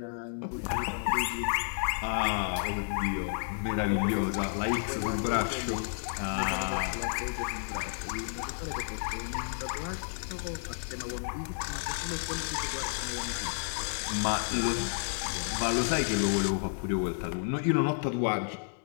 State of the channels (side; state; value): right; silent; 57 dB below the other